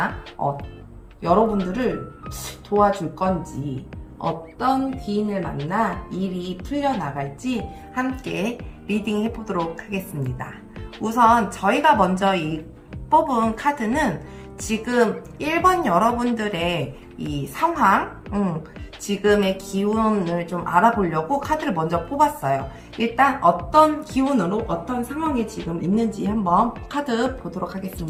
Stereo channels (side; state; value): both; identical; correlation 1.00